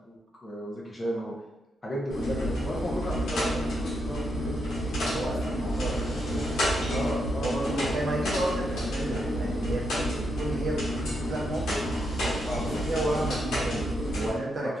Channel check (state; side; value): normal; both; correlation 0.81